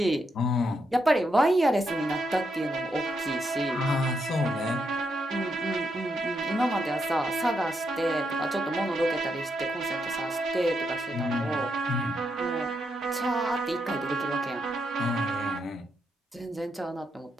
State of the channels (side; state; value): both; normal; correlation 0.80